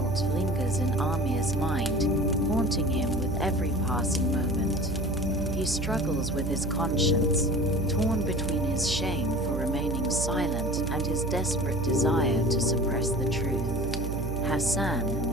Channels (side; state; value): right; noise; hum, 3 dB below the sound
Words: lingers in Amir's mind, haunting him with every passing moment. He struggles with his conscience, torn between his shame for remaining silent and his desperate desire to suppress the truth.